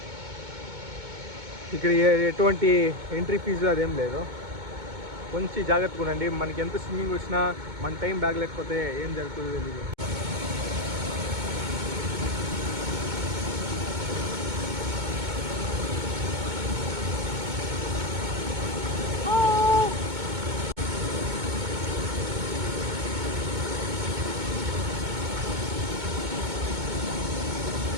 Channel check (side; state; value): left; late; 2.2 ms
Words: ఇక్కడ ఎటువంటి ఎంట్రీ ఫీజు అదేం లేదు. కొంచెం జాగ్రత్తగా ఉండండి. మనకి ఎంత స్విమ్మింగ్ వచ్చినా మన టైం బ్యాగ్ లేకపోతే ఏం జరుగుతుందో తెలియదు.